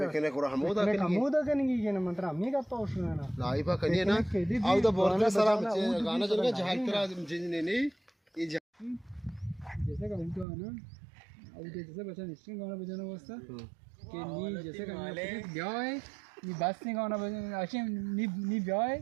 केने कोरा हमोदा कनेगी के ना मंत्र हमें का पास ना लाइव का करिए ना आउ द बोर्ड सारा गाना चल गया जहां तेरा नहीं ये जैसे का उनका है ना अब जैसे बच्चा निश्चित गाना बजाना वास्ता कि नी जैसे का ब्याह है नी बस नहीं गाना बजाना अच्छे नी ब्याह है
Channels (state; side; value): drops out; left; at 10.5 s